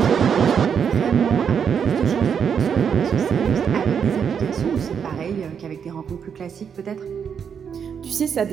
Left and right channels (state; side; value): quieter; left; 7.3 dB